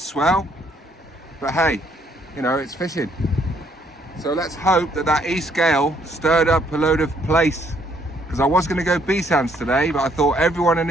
But hey, you know, it's fishing. So let's hope that east gale stirred up a load of place, because I was going to go BASSMAN'S today, but I thought everyone and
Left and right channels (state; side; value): normal; both; correlation 0.67